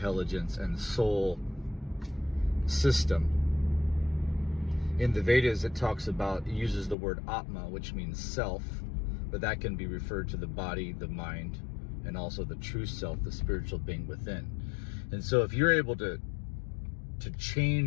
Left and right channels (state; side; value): drops out; right; at 7.0 s